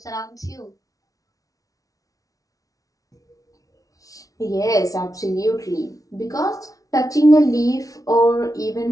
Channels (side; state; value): right; late; 0.17 ms